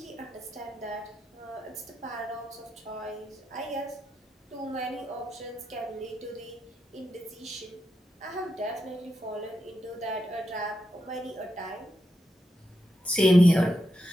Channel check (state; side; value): normal; both; correlation 0.85